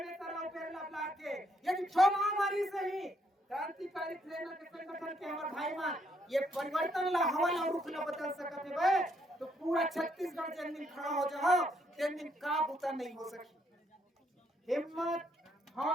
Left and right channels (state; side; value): normal; both; correlation 0.72